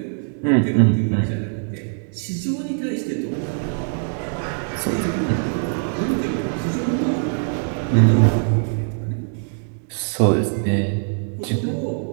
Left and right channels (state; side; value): silent; left; 58 dB below the other